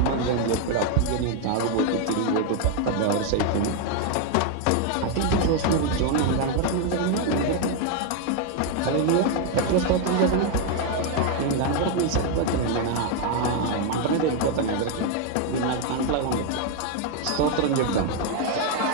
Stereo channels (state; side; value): different; both; correlation 0.01